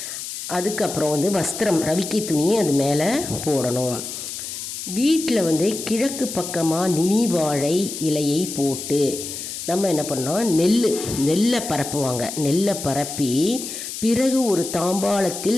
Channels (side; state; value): left; noise; hiss, 7 dB below the sound